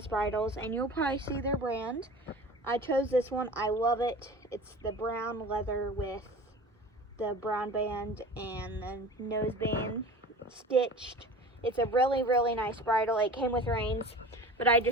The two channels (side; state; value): both; normal; correlation 0.38